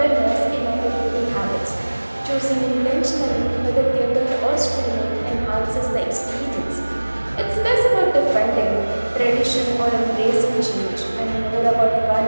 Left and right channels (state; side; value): inverted; both; correlation -1.00